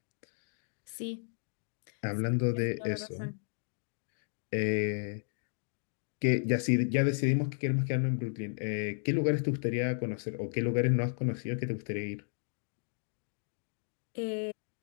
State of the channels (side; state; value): right; silent; digital silence